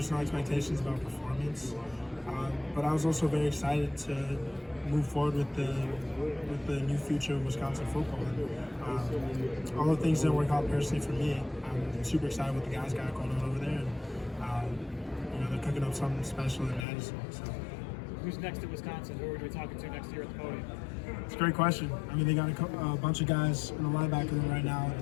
expectations about performance, but I was also very excited to move forward with the new future of Wisconsin football. Although things didn't work out personally for me, I'm super excited what the guys got going on over there. And, they're cooking up something special in Madison. So. Who's next at Wisconsin? Who are we talking to next year at the podium? It's a great question. They got a bunch of guys in the linebacker room right now.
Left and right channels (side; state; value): right; drops out; at 16.9 s